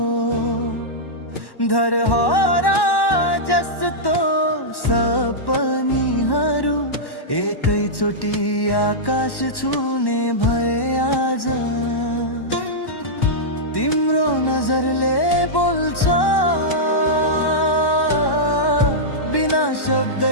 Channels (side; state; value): right; late; 1.1 ms